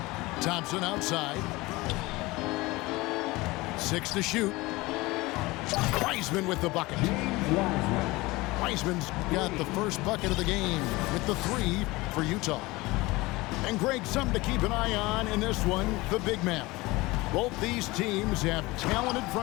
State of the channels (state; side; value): quieter; right; 21.4 dB